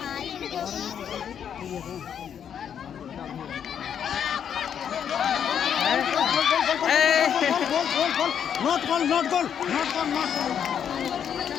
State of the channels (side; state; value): right; quieter; 8.4 dB